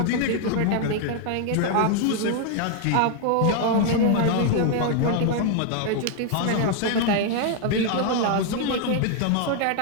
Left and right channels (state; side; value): different; both; correlation 0.00